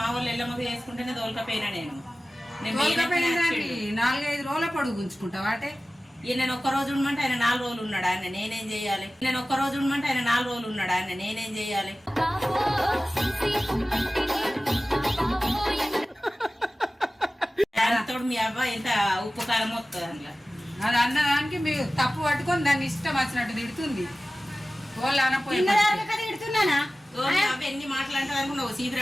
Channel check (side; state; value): both; normal; correlation 0.97